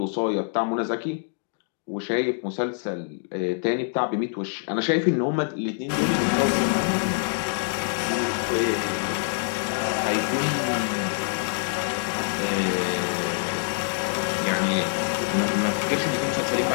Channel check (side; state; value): right; silent; digital silence